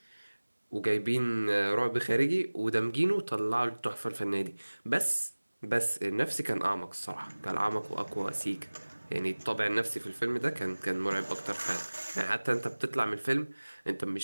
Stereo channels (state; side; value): inverted; both; correlation -1.00